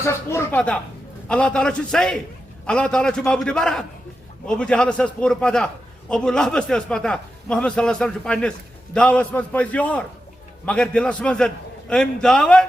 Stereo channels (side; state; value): both; normal; correlation 0.90